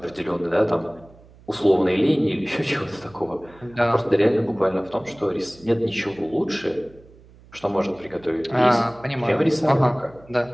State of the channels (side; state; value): right; noise; hum, 25 dB below the sound